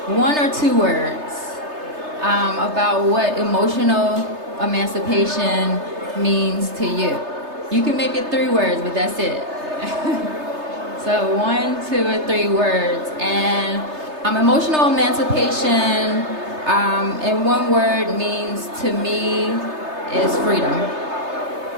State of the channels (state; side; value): late; left; 3.3 ms